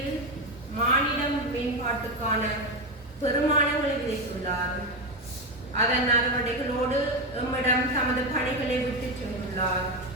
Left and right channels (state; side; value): normal; both; correlation 0.12